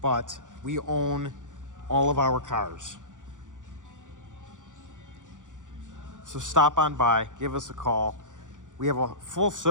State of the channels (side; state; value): left; late; 0.87 ms